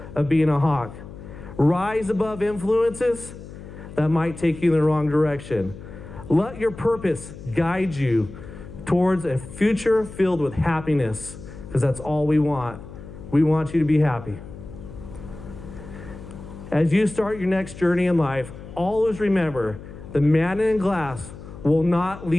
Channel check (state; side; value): noise; left; hum, 14 dB below the sound